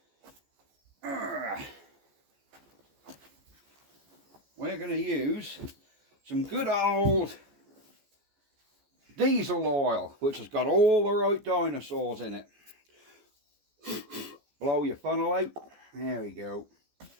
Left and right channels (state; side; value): late; left; 14 ms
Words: we're going to use some good old diesel oil, which has got all the right dinosaurs in it. Blow your funnel out. There we go.